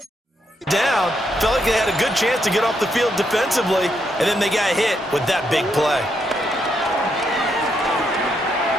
Down, felt like they had a good chance to get off the field defensively, and then they got hit with that big play.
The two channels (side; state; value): both; normal; correlation 0.78